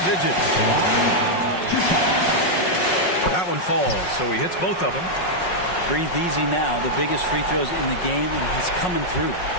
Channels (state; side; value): late; right; 5.5 ms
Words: That one falls, so he hits both of them. Breathe easy now. The biggest free throws in the game, and he's coming through.